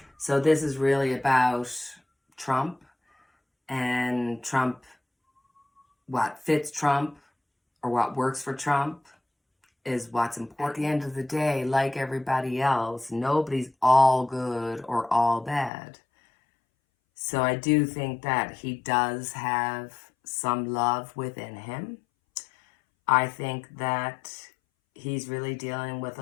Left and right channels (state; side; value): drops out; right; at 15.7 s